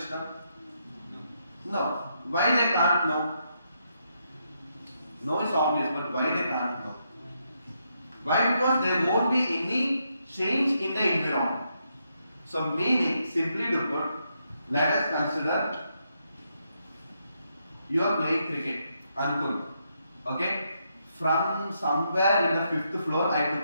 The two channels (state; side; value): inverted; both; correlation -0.79